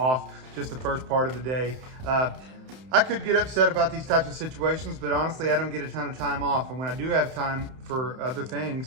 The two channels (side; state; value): left; late; 31 ms